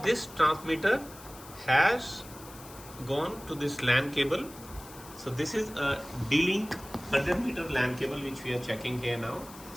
this transmitter has gone to this LAN cable. So this is a D-Link 100-meter LAN cable which we are checking here now.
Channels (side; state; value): left; noise; hiss, 18 dB below the sound